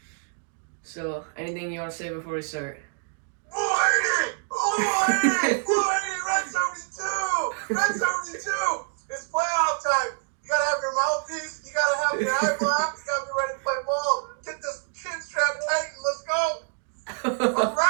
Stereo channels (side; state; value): left; silent; digital silence